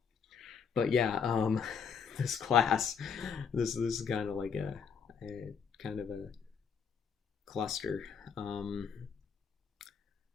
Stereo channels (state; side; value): quieter; right; 6.5 dB